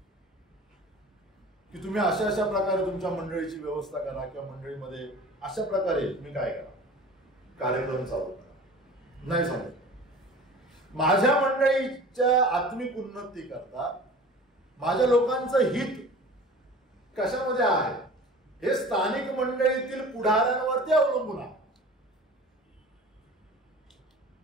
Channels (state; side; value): normal; both; correlation 0.41